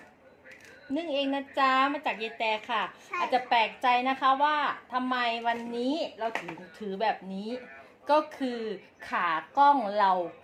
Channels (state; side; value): identical; both; correlation 1.00